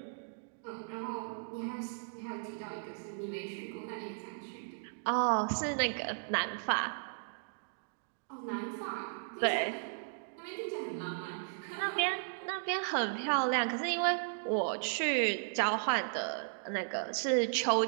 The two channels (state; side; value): silent; left; digital silence